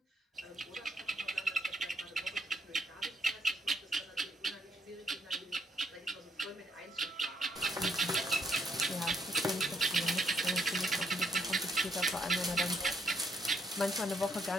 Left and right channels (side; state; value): both; normal; correlation 0.73